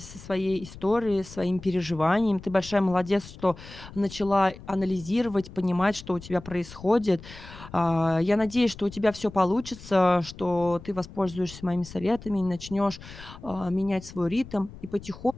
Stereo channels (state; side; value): noise; left; rumble, 16 dB below the sound